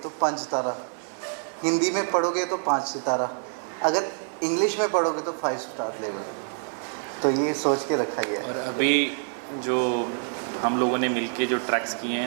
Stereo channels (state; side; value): silent; left; 61 dB below the other